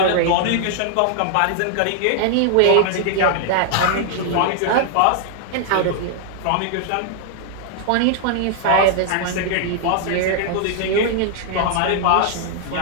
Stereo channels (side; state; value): both; different; correlation -0.01